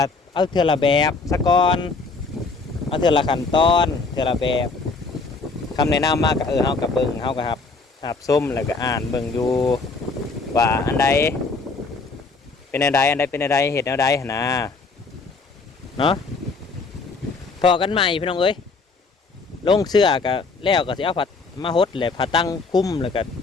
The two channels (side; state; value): right; quieter; 4.1 dB